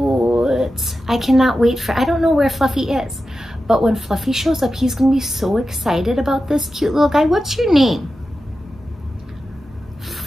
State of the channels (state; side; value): normal; both; correlation 0.92